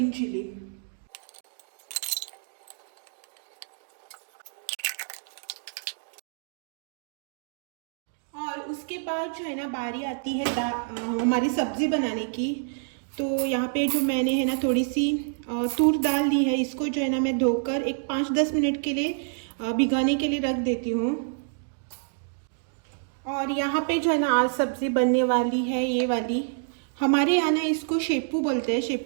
चिली। और उसके बाद जो है ना बारी आती है हमारी सब्जी बनाने की। तो यहाँ पे जो मैंने है ना थोड़ी सी तूर दाल ली है, इसको जो है ना मैं धोकर एक 5-10 मिनट के लिए भिगाने के लिए रख देती हूँ। और यहाँ पे जो है ना आज सब्जी बनने वाली है ये वाली। हमारे यहाँ ना इसको शेपू बोलते हैं,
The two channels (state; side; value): silent; left; digital silence